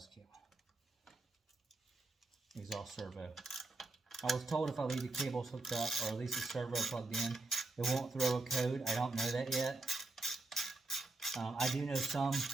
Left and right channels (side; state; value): left; quieter; 3.3 dB